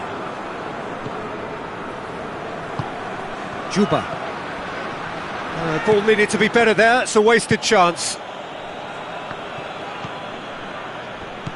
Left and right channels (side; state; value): both; identical; correlation 1.00